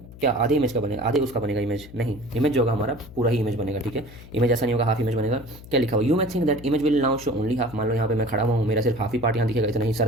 क्या आधे इमेज का बनेगा, आधे उसका बनेगा इमेज, नहीं, इमेज जो होगा हमारा पूरा ही इमेज बनेगा, ठीक है। इमेज ऐसा नहीं होगा हाफ इमेज बनेगा। क्या लिखा हुआ, यू मैं think that image will now show only half, मान लो यहाँ पे मैं खड़ा हुआ हूँ, मेरा सिर्फ हाफ ही पार्ट यहाँ दिखेगा, इतना ही सर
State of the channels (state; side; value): noise; left; hum, 17 dB below the sound